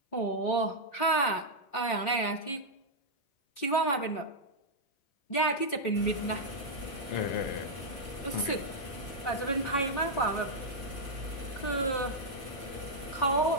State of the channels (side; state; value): right; late; 3.7 ms